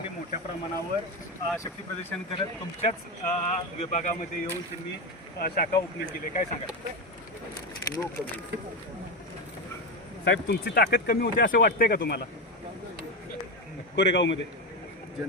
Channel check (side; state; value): both; normal; correlation 0.14